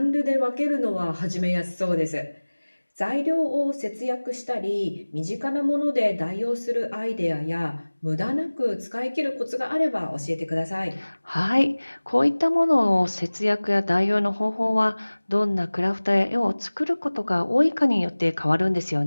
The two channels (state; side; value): inverted; both; correlation -1.00